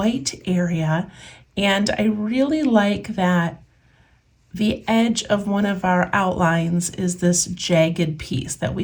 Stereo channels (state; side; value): identical; both; correlation 1.00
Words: area, and I really like that the edge of one of our outlines is this jagged piece that